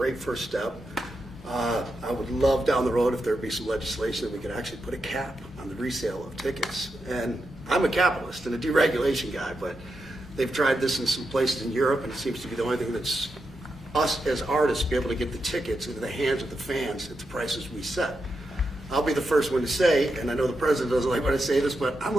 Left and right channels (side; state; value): both; normal; correlation 0.86